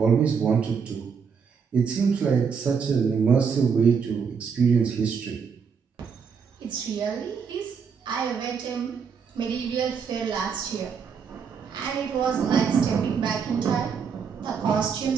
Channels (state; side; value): quieter; left; 6.3 dB